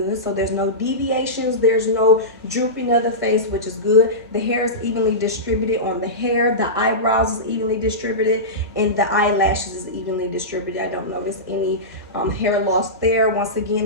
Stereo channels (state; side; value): normal; both; correlation -0.17